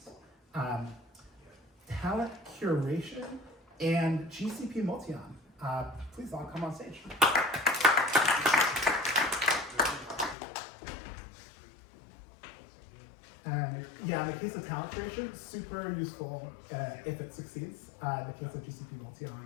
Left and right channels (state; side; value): drops out; right; at 10.4 s